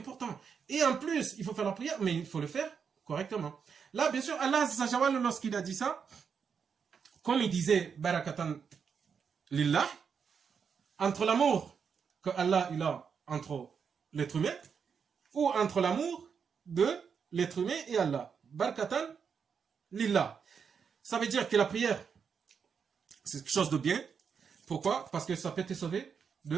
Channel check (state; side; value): quieter; left; 6.5 dB